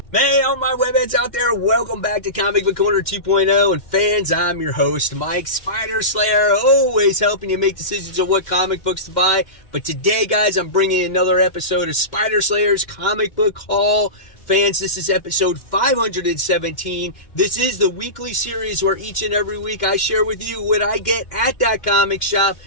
Hey, all my webheads out there, welcome back to Comic Book Corner 2.0, and fans, I'm your host, Mike Spider Slayer, always helping you make decisions on what comic books to buy. But today, guys, I'm bringing another episode of Spider Slayer's Comic Book Haul. Fans, this is episode 517. This is the weekly series where each and every week I share with you what I get at that comic shop,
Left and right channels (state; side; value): late; right; 2.1 ms